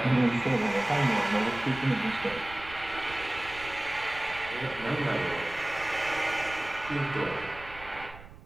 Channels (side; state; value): right; noise; rumble, 17 dB below the sound